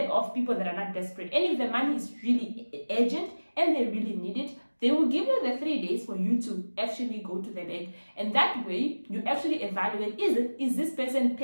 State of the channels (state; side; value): inverted; both; correlation -1.00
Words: off people that are not desperate. And if the money is really urgent and they really need it, they will give you the 3 days for you to actually go to the bank. And that way you actually evaluate, is this person